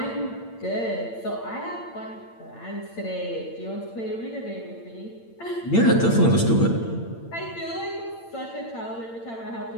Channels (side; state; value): right; late; 8.8 ms